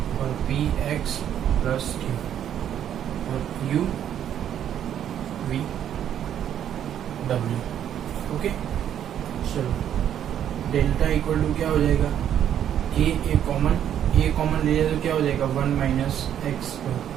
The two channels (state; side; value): quieter; left; 10.0 dB